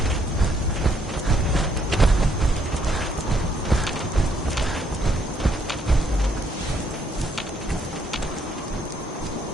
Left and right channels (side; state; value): both; normal; correlation 0.70